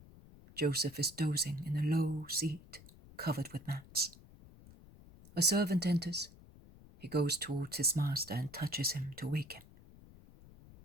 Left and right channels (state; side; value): noise; left; rumble, 21 dB below the sound